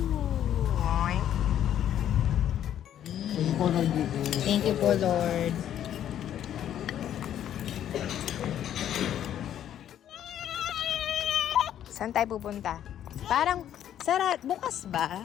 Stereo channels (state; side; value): quieter; right; 10.7 dB